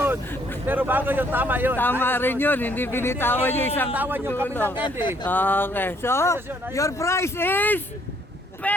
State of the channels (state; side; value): normal; both; correlation 0.66